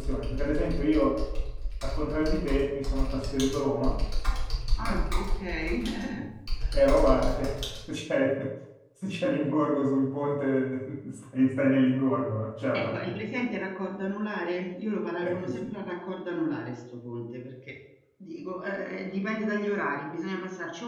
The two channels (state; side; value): identical; both; correlation 1.00